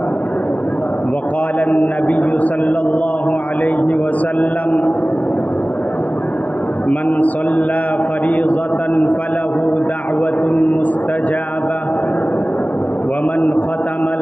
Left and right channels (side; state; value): right; late; 0.073 ms